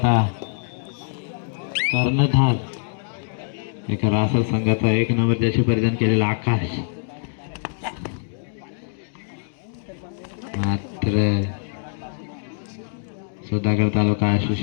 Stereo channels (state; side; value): silent; right; digital silence